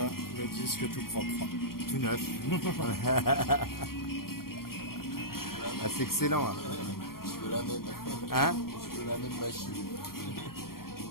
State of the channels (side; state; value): right; late; 0.93 ms